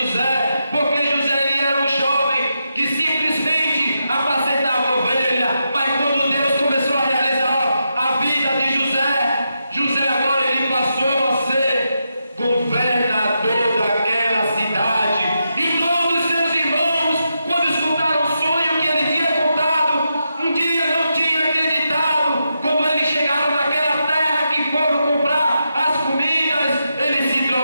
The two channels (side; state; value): both; inverted; correlation -0.85